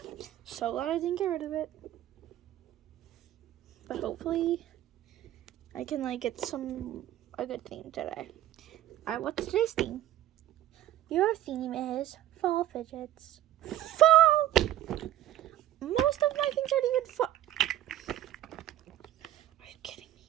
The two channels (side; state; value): left; quieter; 13.1 dB